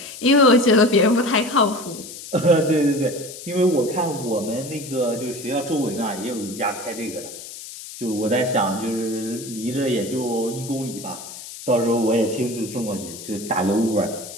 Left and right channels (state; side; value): noise; left; hiss, 13 dB below the sound